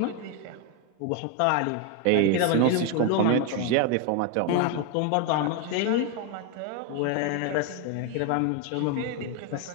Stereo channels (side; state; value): both; different; correlation 0.01